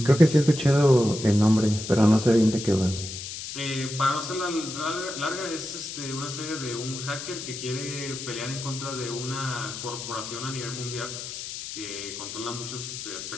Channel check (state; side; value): noise; left; hiss, 8 dB below the sound